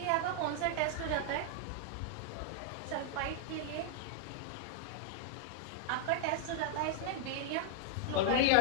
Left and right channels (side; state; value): both; different; correlation -0.01